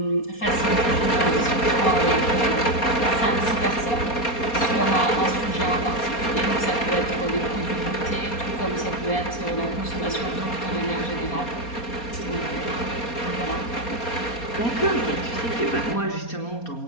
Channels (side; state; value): right; late; 4.2 ms